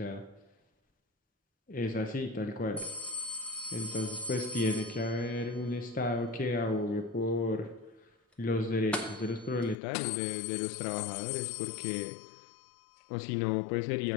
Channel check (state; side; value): drops out; right; at 9.8 s